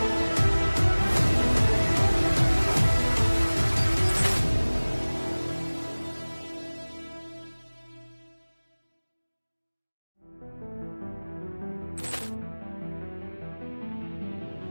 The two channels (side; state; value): both; inverted; correlation -1.00